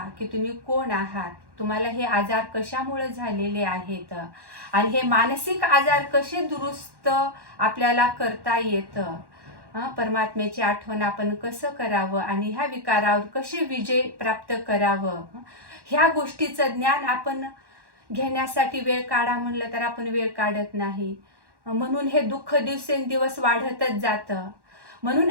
की तुम्ही कोण आहात, तुम्हाला हे आजार कशामुळे झालेले आहेत आणि हे मानसिक आजार कसे दुरुस्त आपल्याला करता येतं. परमात्म्याची आठवण आपण कसं करावं आणि ह्या विकारावर कसे विजय प्राप्त करावं, ह्या गोष्टीचं ज्ञान आपण घेण्यासाठी वेळ काढा म्हणलं तर आपण वेळ काढत नाही. म्हणून हे दुःख दिवसेंदिवस वाढतच जातं. म्हणून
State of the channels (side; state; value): left; late; 1.1 ms